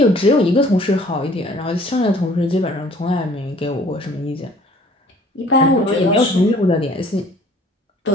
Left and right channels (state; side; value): normal; both; correlation 0.54